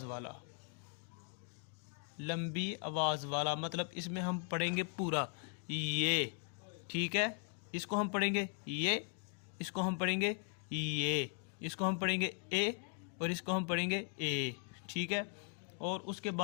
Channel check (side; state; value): right; quieter; 39.9 dB